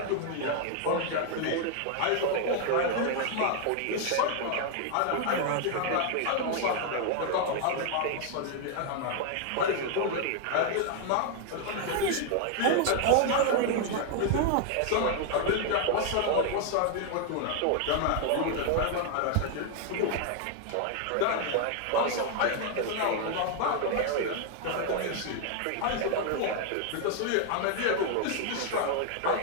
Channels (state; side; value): different; both; correlation 0.00